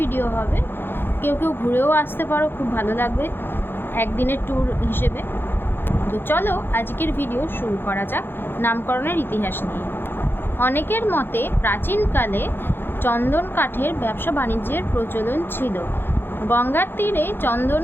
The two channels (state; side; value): late; right; 0.10 ms